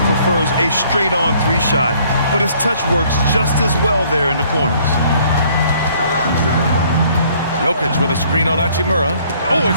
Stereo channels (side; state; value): both; inverted; correlation -0.61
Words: prefers a straight-on three-shot, but his touch works just as well there in the corners. Jokic with a screen on Hachimura. Oh,